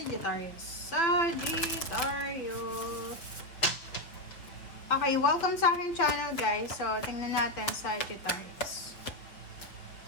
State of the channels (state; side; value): late; right; 5.5 ms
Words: Okay, welcome sa aking channel guys. So, tingnan natin Sagittarius.